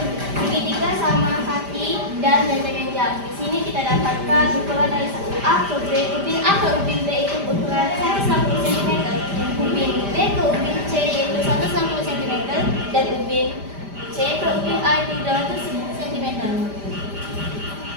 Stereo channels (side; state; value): left; late; 5.0 ms